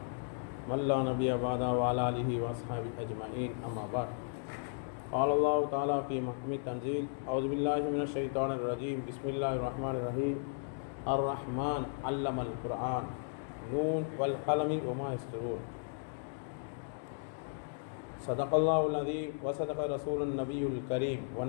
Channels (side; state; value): right; silent; digital silence